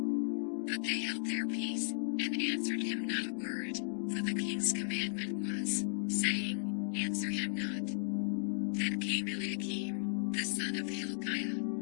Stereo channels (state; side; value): silent; right; digital silence